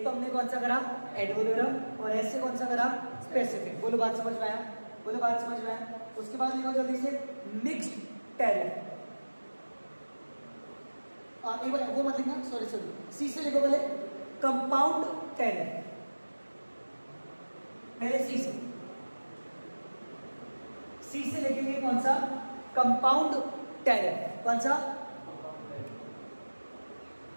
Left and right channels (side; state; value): both; inverted; correlation -1.00